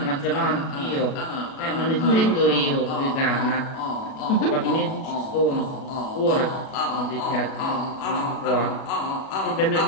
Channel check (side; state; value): right; late; 37 ms